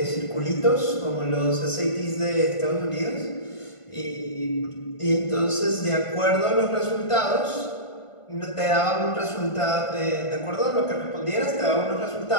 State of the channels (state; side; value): late; right; 1.5 ms